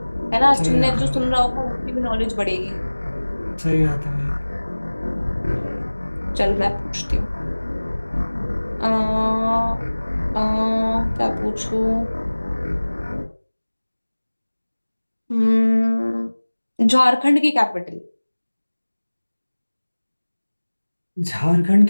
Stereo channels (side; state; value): both; inverted; correlation -1.00